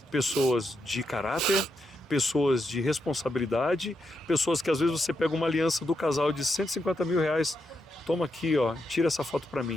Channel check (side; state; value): both; normal; correlation 0.83